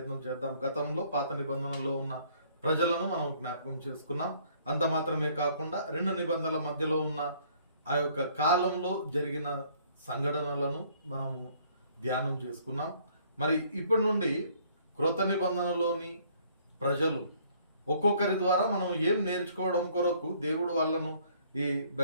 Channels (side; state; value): both; inverted; correlation -0.61